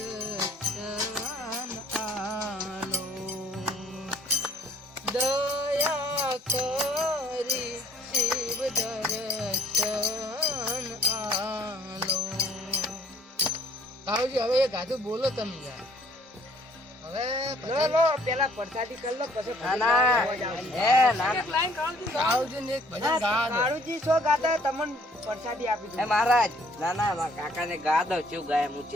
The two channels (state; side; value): normal; both; correlation 0.60